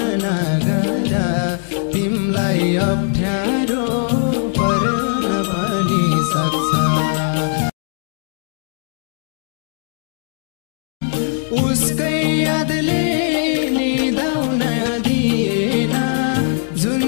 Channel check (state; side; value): silent; right; digital silence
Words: नगर तिमलाई अप्ठ्यारो पर्न पनि सक्छ। उसकै यादले निदाउन दिएन जुन